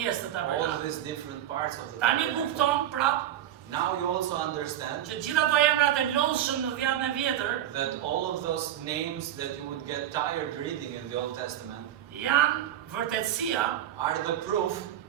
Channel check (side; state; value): left; quieter; 11.7 dB